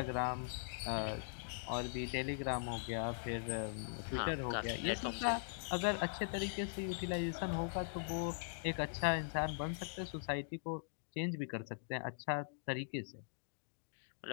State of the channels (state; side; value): silent; right; digital silence